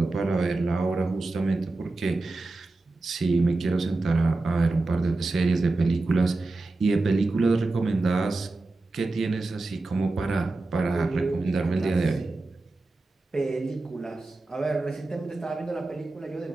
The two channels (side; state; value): left; quieter; 3.2 dB